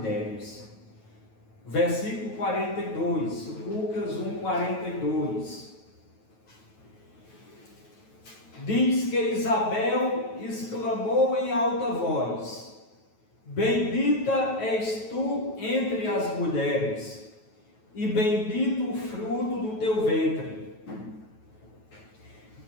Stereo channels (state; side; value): late; right; 9.2 ms